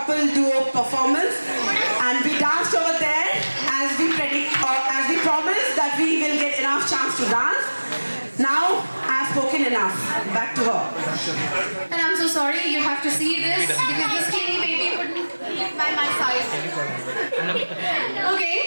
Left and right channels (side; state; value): both; inverted; correlation -1.00